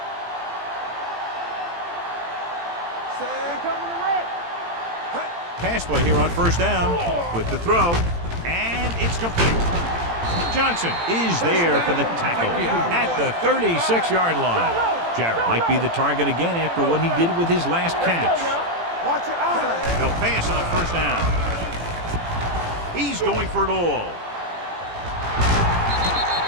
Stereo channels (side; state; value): left; late; 18 ms